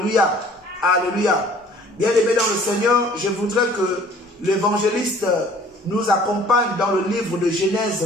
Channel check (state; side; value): normal; both; correlation 0.53